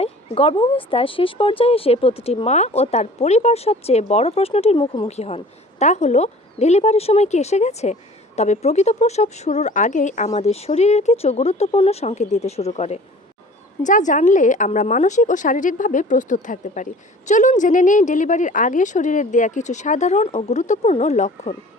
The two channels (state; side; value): normal; both; correlation 0.46